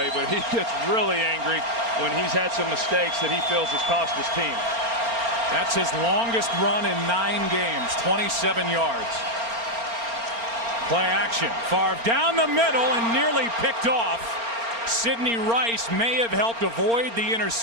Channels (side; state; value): left; late; 4.3 ms